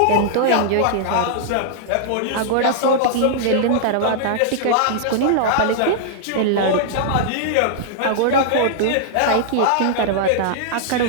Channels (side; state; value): both; different; correlation -0.01